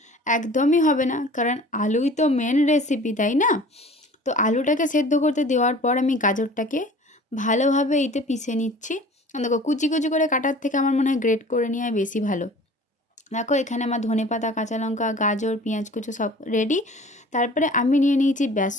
একদমই হবে না, কারণ আলুই তো মেন রেসিপি, তাই না? তো আলুটাকে সেদ্ধ করতে দেওয়ার পর আমি গাজরটাকে ভালোভাবে এতে পিষে নিচ্ছি। দেখো, কুচি কুচি করে কাটার থেকে আমার মনে হয় গ্রেট করে নেওয়া বেশি ভালো। দেখো, এখানে আমার ধনেপাতা, কাঁচা লঙ্কা, গাজর, পেঁয়াজ কুচো সব রেডি। তারপরে আমি নিয়ে নিয়েছি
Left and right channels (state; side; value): normal; both; correlation 0.46